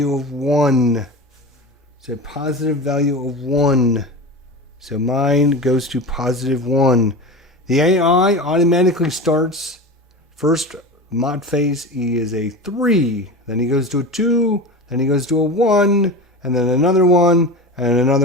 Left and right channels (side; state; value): both; normal; correlation 0.28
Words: of 1. So a positive value of 1. So mine goes to +1. The AI automatically starts first Mott phase. He is a 3. Then he goes to a 2. Then he goes to a 1. And then another one, and